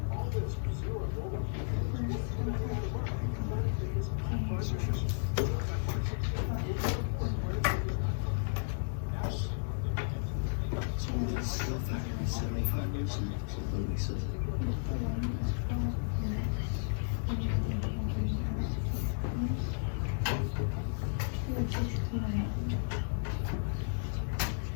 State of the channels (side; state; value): right; silent; 55 dB below the other